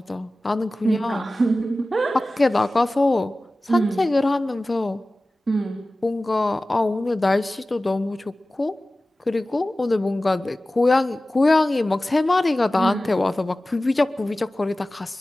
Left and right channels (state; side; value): normal; both; correlation 0.96